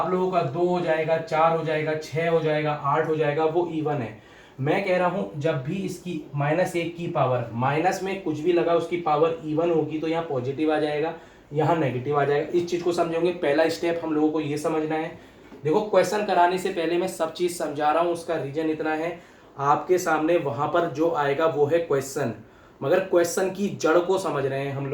लोगों का, 2 हो जाएगा, 4 हो जाएगा, 6 हो जाएगा, 8 हो जाएगा, वो इवन है। मैं कह रहा हूं जब भी इसकी -1 की पावर, माइनस में कुछ भी लगा उसकी पावर इवन होगी तो यहाँ पॉजिटिव आ जाएगा, यहाँ नेगेटिव आ जाएगा। इस चीज को समझोगे, पहला स्टेप हम लोगों को ये समझना है। देखो क्वेश्चन कराने से पहले मैं सब चीज समझा रहा हूं, उसका रीजन इतना है, आपके सामने वहां पर जो आएगा वो है क्वेश्चन, मगर क्वेश्चन की जड़ को समझ रहे हैं हम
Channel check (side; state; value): both; identical; correlation 1.00